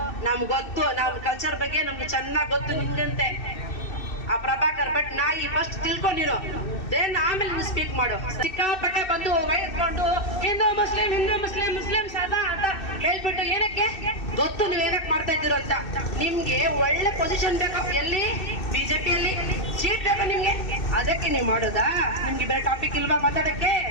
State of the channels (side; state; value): right; late; 2.6 ms